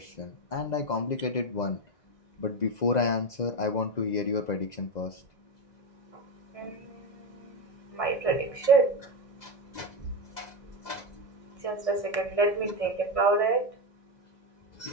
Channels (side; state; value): right; late; 2.0 ms